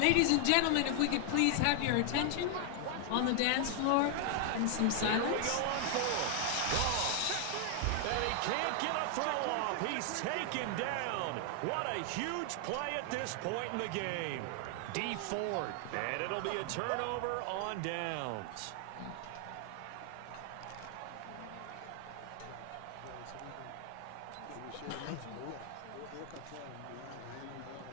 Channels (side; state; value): both; different; correlation 0.00